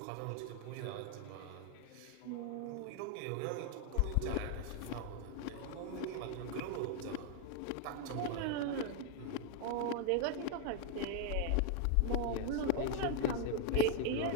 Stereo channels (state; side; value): different; both; correlation 0.00